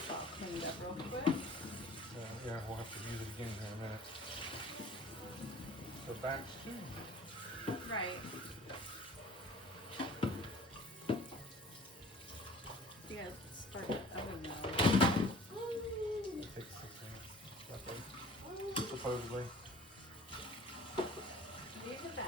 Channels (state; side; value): normal; both; correlation 0.47